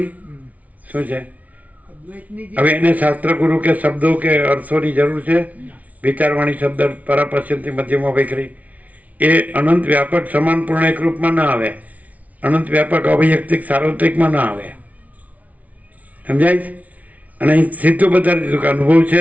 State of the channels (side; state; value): left; late; 0.070 ms